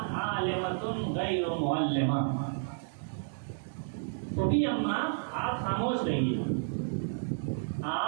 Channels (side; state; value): left; silent; digital silence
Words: عالمۃ غیر معلمہ، تو بھی اماں آپ خاموش رہیے،